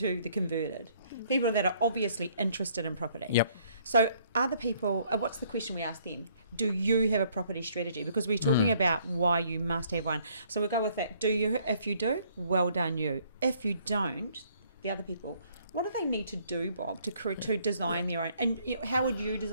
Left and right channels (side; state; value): both; inverted; correlation -0.64